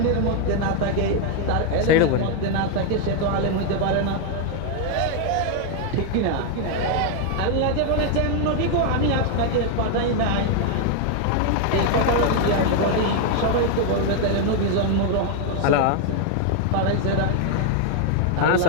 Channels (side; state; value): both; different; correlation 0.00